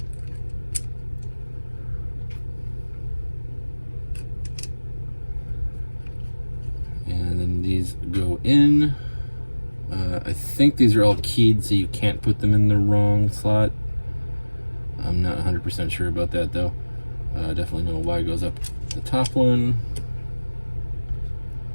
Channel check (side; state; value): both; inverted; correlation -1.00